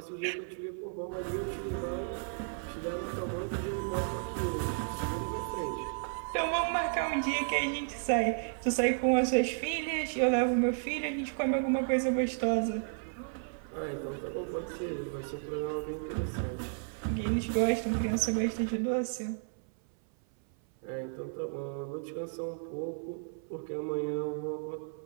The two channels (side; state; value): left; silent; 56 dB below the other